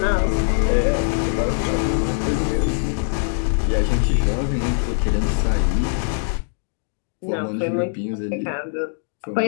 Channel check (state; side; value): silent; right; digital silence